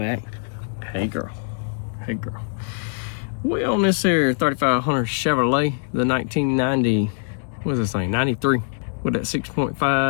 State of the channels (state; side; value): silent; right; digital silence